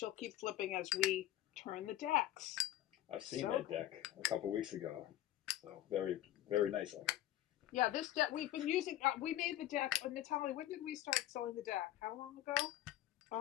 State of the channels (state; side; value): quieter; right; 13.8 dB